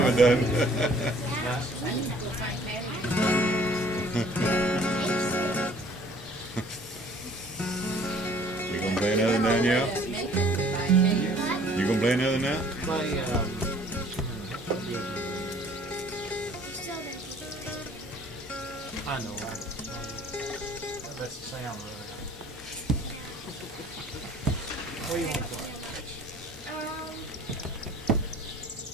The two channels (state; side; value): normal; both; correlation 0.54